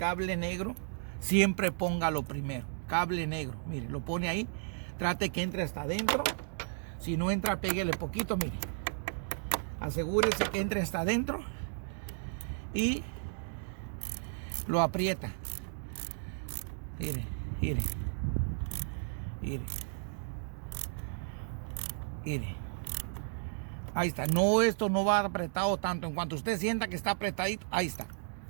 negro, siempre póngalo primero. Cable negro, mire, lo pone ahí. Trate que entre hasta adentro. Si no entra, péguele poquito, mire. Asegúrese que entre hasta adentro. Y lo aprieta. Mire, mire. Mire. Mire. Ahí está. No, esto no va apretado tanto. En cuanto usted sienta que está apretadito, ahí está.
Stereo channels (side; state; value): left; silent; digital silence